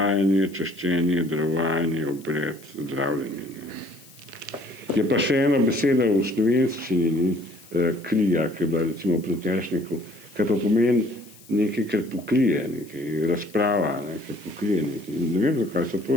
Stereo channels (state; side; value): noise; left; hiss, 23 dB below the sound